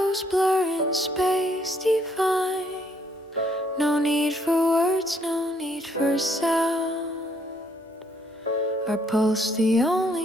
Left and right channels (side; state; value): both; normal; correlation 0.69